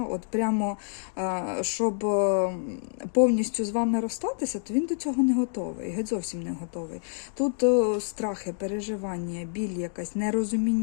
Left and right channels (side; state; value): right; silent; digital silence